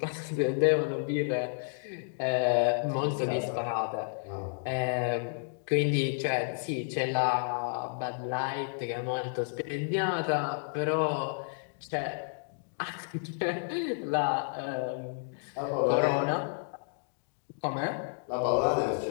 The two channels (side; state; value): right; silent; digital silence